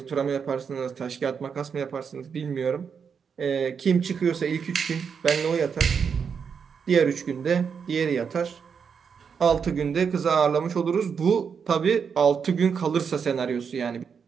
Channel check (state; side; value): quieter; left; 6.5 dB